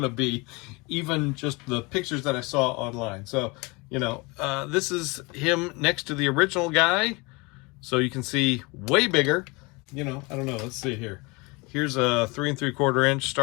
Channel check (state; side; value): quieter; right; 26.7 dB